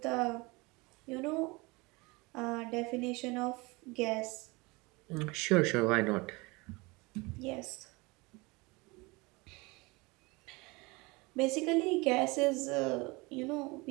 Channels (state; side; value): quieter; left; 25.0 dB